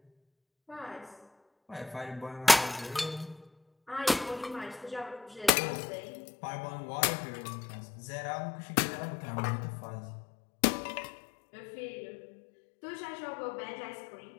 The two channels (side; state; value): right; drops out; at 5.5 s